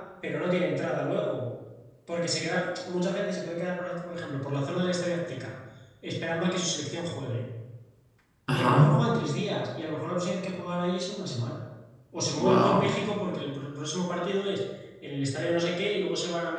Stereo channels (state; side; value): identical; both; correlation 1.00